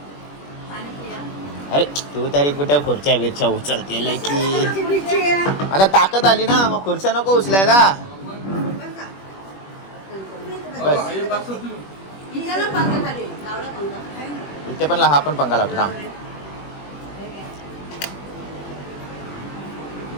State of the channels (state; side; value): late; right; 21 ms